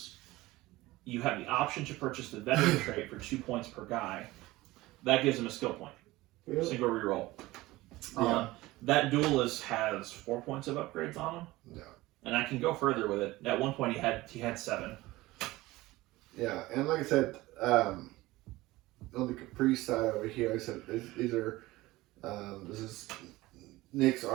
You have the option to purchase the veteran trait for 2 points per guy. That gives them a skill point. Really? Single reroll. Yeah. That duelist has 4 points of upgrades on him. Yeah. And I can go further with it. At one point, he had 7. Yeah, and like I said, on the Caprice side over here, like I said these are this is Nick's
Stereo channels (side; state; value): left; quieter; 18.9 dB